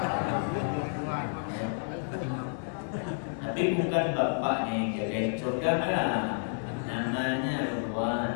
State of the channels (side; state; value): right; silent; digital silence